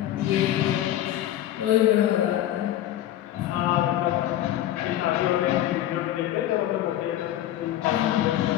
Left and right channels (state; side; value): quieter; right; 12.9 dB